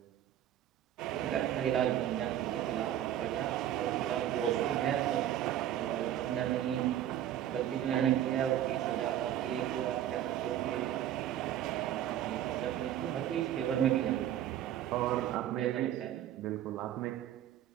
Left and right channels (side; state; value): left; quieter; 11.4 dB